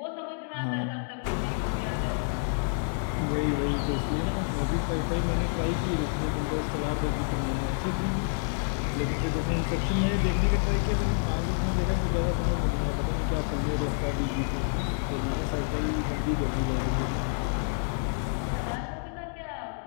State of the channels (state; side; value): silent; right; digital silence